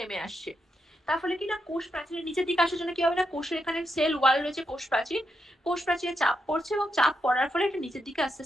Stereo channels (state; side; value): normal; both; correlation 0.82